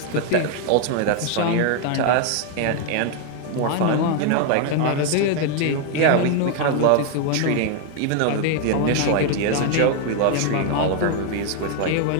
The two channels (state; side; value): different; both; correlation 0.00